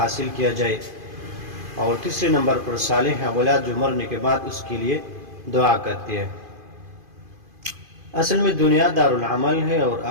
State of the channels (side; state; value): left; late; 2.5 ms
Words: کیا جائے، اور تیسرے نمبر پر صالح اولاد جو مرنے کے بعد اس کے لیے دعا کرتی ہے۔ اصل میں دنیا دار العمل ہے اور